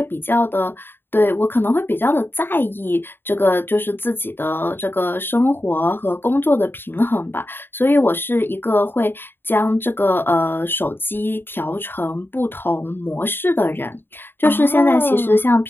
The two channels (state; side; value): late; right; 0.10 ms